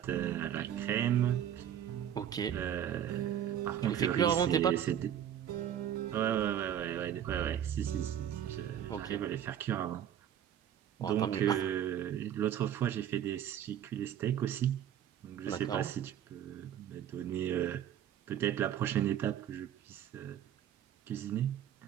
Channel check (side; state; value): left; quieter; 10.1 dB